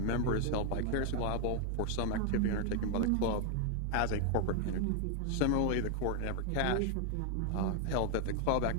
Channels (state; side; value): different; both; correlation 0.00